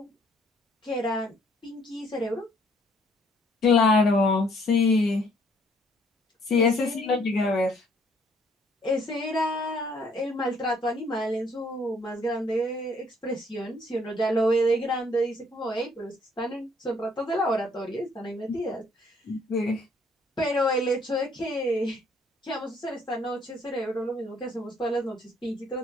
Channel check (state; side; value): normal; both; correlation 0.63